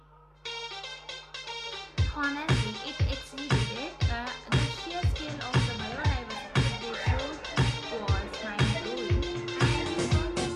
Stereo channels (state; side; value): identical; both; correlation 1.00